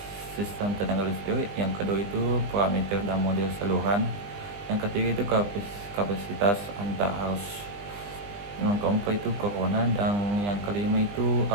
sistem tenaga listrik, yang kedua itu parameter dan model saluran, yang ketiga itu kapasitas antar arus, yang keempat itu corona, dan yang kelima itu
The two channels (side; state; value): left; late; 20 ms